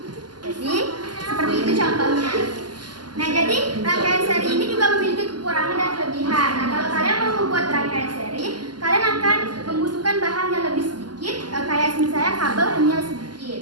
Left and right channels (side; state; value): left; late; 0.70 ms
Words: Jadi seperti itu contohnya. Nah, jadi rangkaian seri ini juga memiliki kekurangan dan kelebihan. Nah, kalau kalian mau membuat rangkaian seri, kalian akan membutuhkan bahan yang lebih sedikit, kayak misalnya kabel hanya